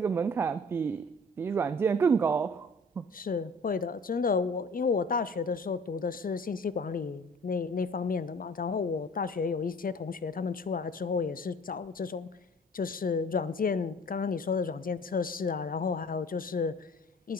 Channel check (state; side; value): normal; both; correlation 0.48